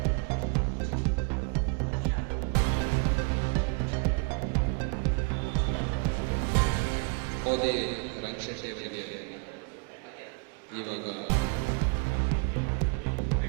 ಮೋದಿ ರಂಗಶೆಟ್ಟಿ ಅವರಿಗೆ ಇವಾಗ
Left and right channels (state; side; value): quieter; left; 34.5 dB